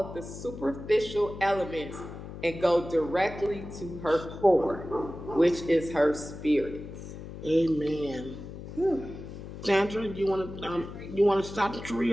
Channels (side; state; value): left; noise; hum, 11 dB below the sound